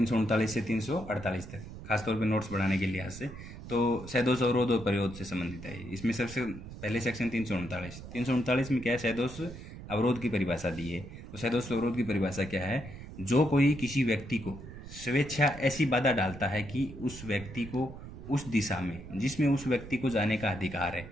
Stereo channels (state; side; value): noise; right; rumble, 13 dB below the sound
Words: से 348 तक खासतौर पे नोट्स बढ़ाने के लिहाज से तो सैदोष अवरोध और परिरोध से संबंधित है। इसमें सबसे पहले सेक्शन 339 में क्या है, सैदोष अवरोध की परिभाषा दी है। तो सैदोष अवरोध की परिभाषा क्या है, जो कोई किसी व्यक्ति को स्वेच्छा ऐसी बाधा डालता है कि उस व्यक्ति को उस दिशा में जिसमें उस व्यक्ति को जाने का अधिकार है